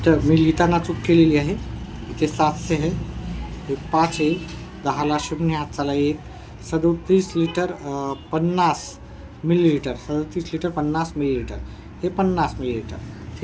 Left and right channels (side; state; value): both; identical; correlation 1.00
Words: मी लिहिताना चूक केलेली आहे. इथे 700 आहे, हे 5 येईल. 10ला 0 हात चाला 1. 37 लिटर 50 मिलीलीटर. 37 litre 50 millilitre. हे 50 मिलीलीटर.